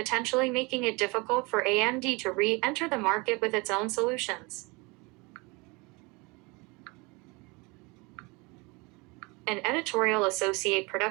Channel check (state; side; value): quieter; left; 26.9 dB